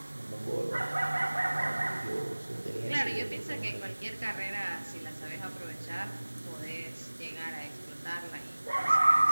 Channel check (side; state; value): both; inverted; correlation -1.00